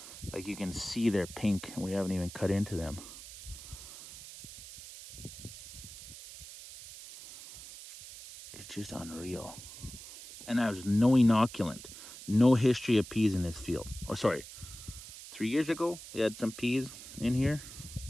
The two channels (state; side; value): noise; right; hiss, 14 dB below the sound